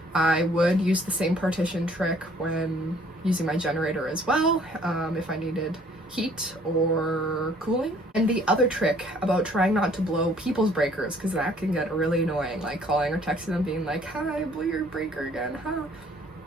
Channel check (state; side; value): normal; both; correlation 0.59